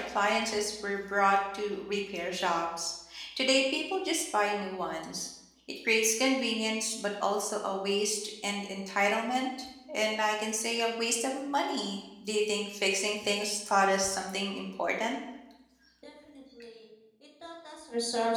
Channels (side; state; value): both; identical; correlation 1.00